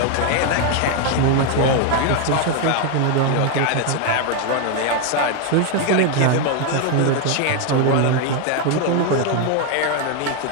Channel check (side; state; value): both; different; correlation 0.01